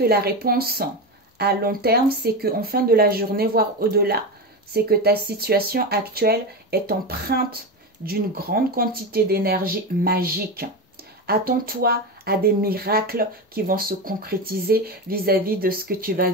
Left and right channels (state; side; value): normal; both; correlation 0.19